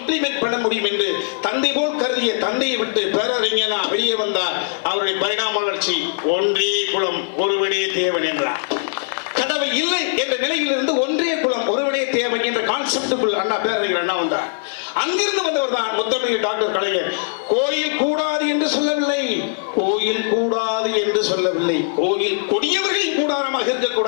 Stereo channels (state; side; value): silent; right; digital silence